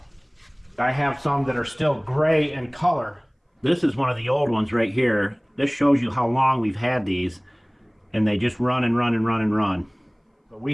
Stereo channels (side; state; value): both; identical; correlation 1.00